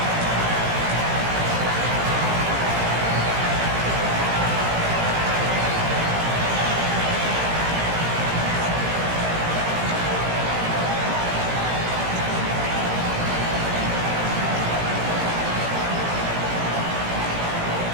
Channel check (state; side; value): late; left; 17 ms